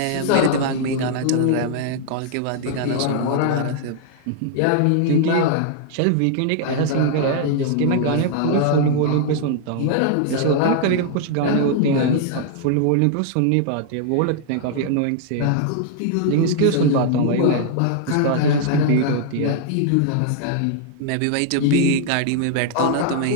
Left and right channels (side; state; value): both; different; correlation -0.01